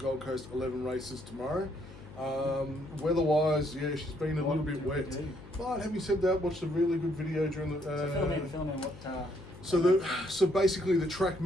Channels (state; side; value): noise; left; hum, 17 dB below the sound